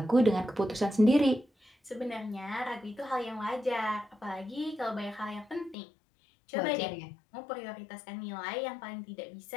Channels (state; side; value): drops out; right; at 5.8 s